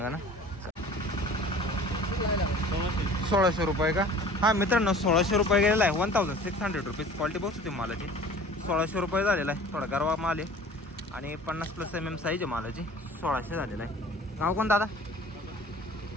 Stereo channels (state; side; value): normal; both; correlation 0.45